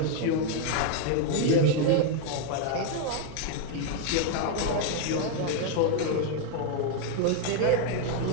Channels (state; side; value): different; both; correlation 0.01